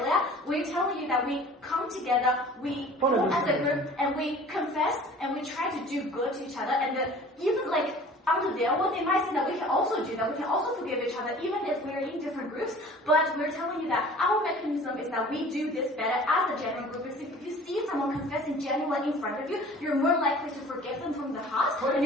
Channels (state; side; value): normal; both; correlation 0.46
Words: We're telling you that we come together, we form as a group, and we confess and we try to do good to each other. And even under their world, they might say that we can also do that. We can also forgive each other, even if we're in different groups. But we're telling you that our mechanism is that we do this better as a genuine group. If you see someone confessing genuinely in front of you, you're more likely to forgive them from the heart, and